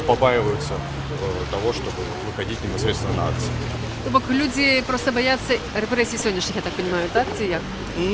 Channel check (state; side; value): identical; both; correlation 1.00